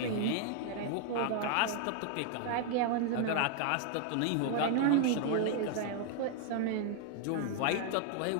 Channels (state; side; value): different; both; correlation 0.00